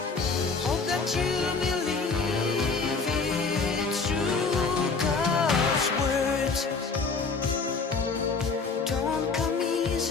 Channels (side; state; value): right; quieter; 4.5 dB